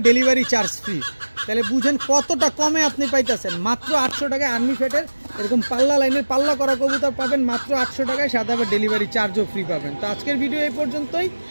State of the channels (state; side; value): inverted; both; correlation -1.00